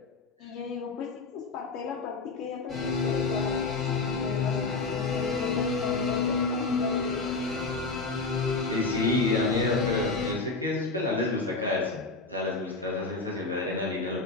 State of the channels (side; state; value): right; quieter; 3.7 dB